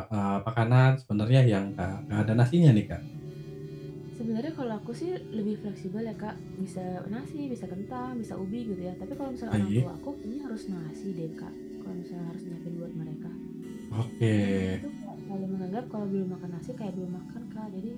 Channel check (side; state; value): both; identical; correlation 1.00